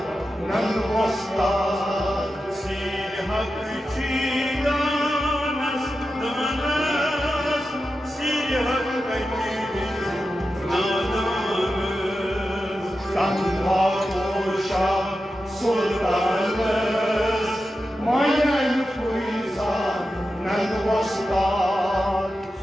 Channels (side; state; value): both; normal; correlation 0.91